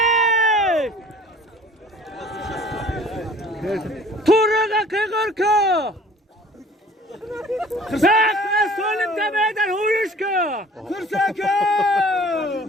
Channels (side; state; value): both; normal; correlation 0.50